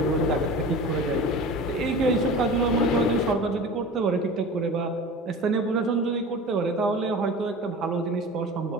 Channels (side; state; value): both; normal; correlation 0.35